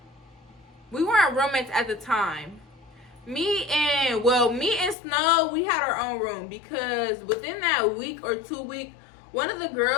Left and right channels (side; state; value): right; drops out; at 5.0 s